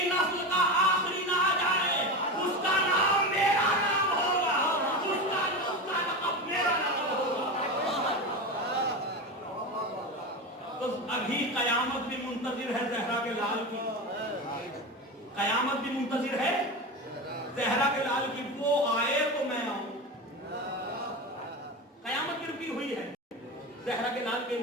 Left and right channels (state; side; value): normal; both; correlation 0.22